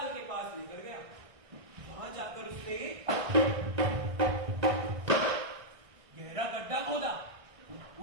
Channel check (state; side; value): late; left; 1.6 ms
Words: के पास लेकर गया। वहां जाकर उसने गहरा गड्ढा खोदा।